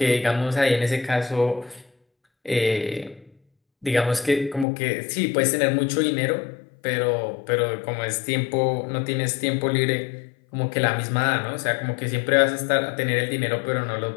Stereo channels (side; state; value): right; drops out; at 4.7 s